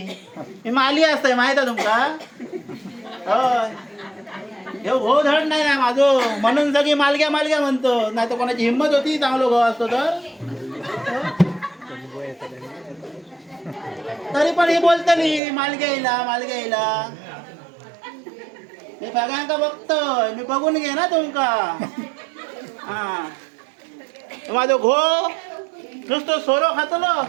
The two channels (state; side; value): drops out; left; at 15.4 s